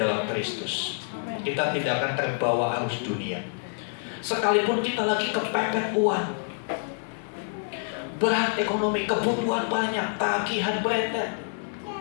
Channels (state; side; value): silent; right; 60 dB below the other